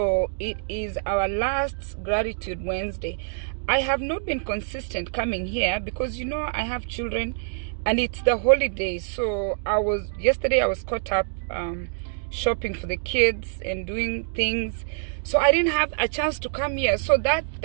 it is our last Gratitude Wednesday. I have not been consistent coming here because I have children and it's the holidays. So yesterday I was caught up shopping for the kids and doing things, so I didn't have a chance to come here. So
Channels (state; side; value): silent; left; digital silence